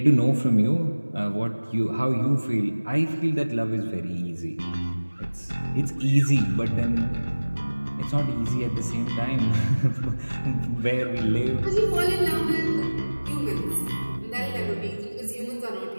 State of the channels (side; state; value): both; inverted; correlation -1.00